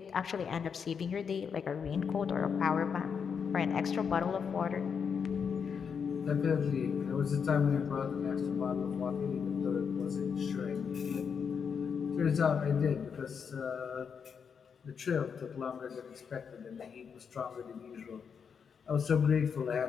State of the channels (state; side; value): quieter; right; 6.6 dB